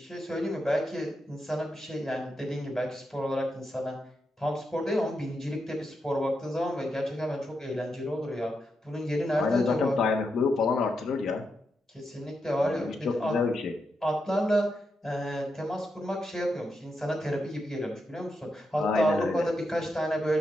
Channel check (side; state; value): both; normal; correlation 0.85